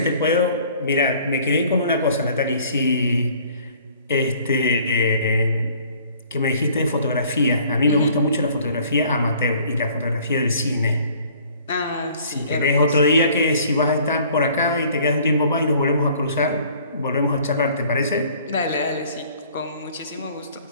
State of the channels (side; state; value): both; inverted; correlation -0.55